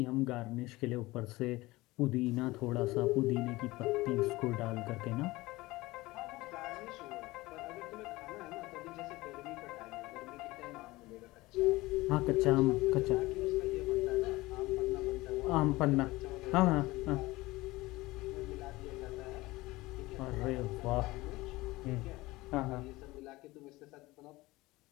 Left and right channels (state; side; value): quieter; right; 20.1 dB